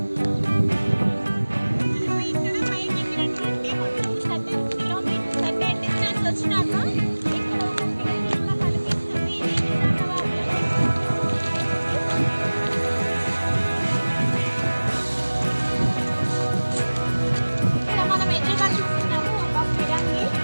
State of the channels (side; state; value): both; inverted; correlation -1.00